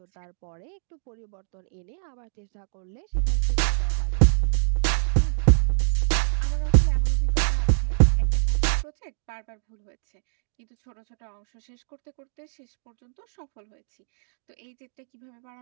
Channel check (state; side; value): silent; left; digital silence